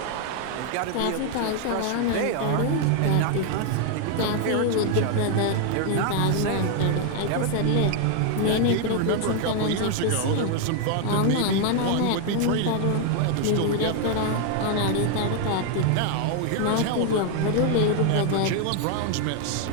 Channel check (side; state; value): both; different; correlation 0.00